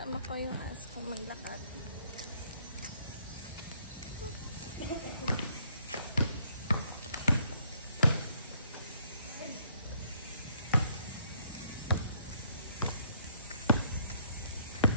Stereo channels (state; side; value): inverted; both; correlation -0.67